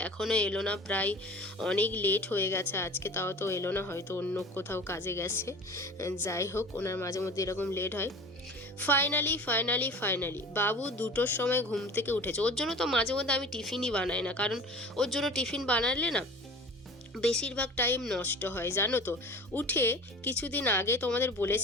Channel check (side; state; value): both; normal; correlation 0.39